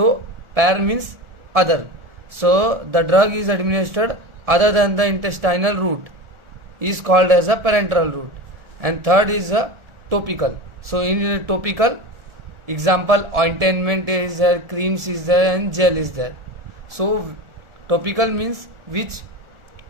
par means other. So the drug is administered other than the intestinal route is called as a parenteral route. And third is a topical. So in topical, example, ointment is there, creams is there, and gel is there. So topical means which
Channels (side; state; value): left; late; 1.4 ms